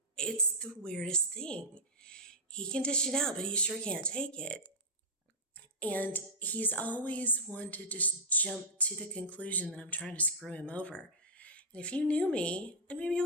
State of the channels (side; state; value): both; normal; correlation -0.08